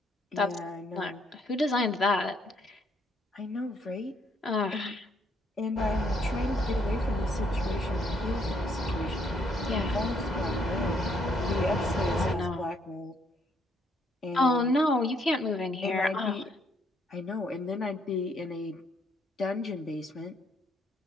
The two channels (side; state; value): both; normal; correlation 0.69